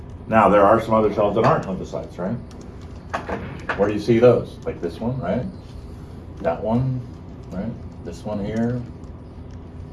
Now, there are some other cells that aren't lymphocytes, right? Where do you see those? Like this one, right? That one, right? This one here.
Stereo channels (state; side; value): identical; both; correlation 1.00